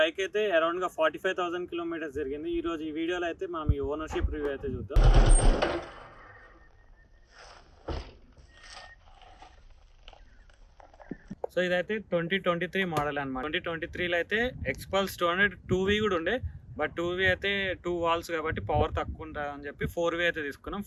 అయితే అరౌండ్గా 45,000 కిలోమీటర్స్ జరిగింది. ఈ రోజు ఈ వీడియోలో అయితే మనం ఈ ఓనర్షిప్ రివ్యూ అయితే చూద్దాం. సో ఇదైతే 2023 మోడల్ అనమాట. 2023లో అయితే ఎక్స్పల్స్ 200 2V కూడా ఉండే, బట్ 2V అయితే 2 వాల్స్ కాబట్టి పవర్ తక్కువ ఉంటుంది అని చెప్పి 4V అయితే తీసుకున్నాం.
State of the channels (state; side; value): identical; both; correlation 1.00